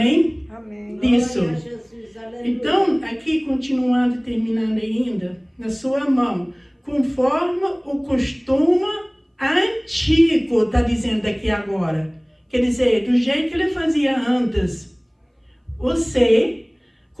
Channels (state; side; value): identical; both; correlation 1.00